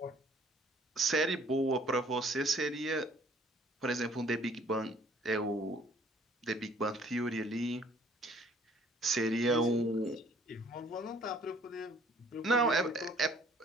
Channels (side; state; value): both; normal; correlation 0.57